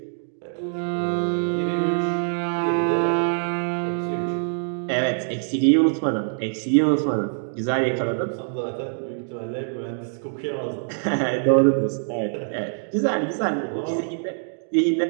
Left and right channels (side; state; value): left; silent; digital silence